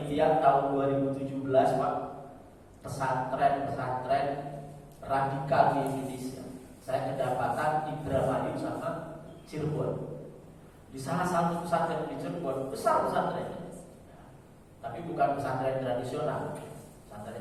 tahun 2017, Pak, pesantren radikal di Indonesia. Saya kedapatan Indramayu sama Cirebon. Di salah satu pesantren di Cirebon, besar pesantrennya, tapi bukan pesantren tradisional,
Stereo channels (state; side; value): identical; both; correlation 1.00